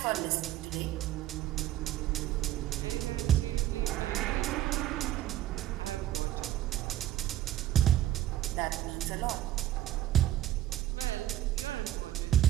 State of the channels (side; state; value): left; quieter; 13.0 dB